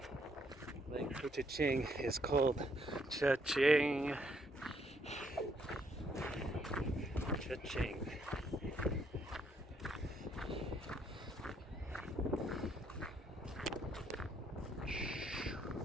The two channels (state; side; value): normal; both; correlation 0.71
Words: Lake Couchiching is called Cha-ching. Cha-ching.